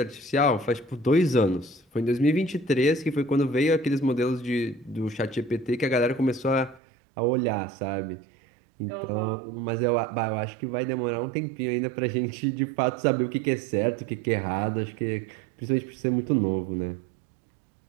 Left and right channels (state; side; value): drops out; left; at 6.8 s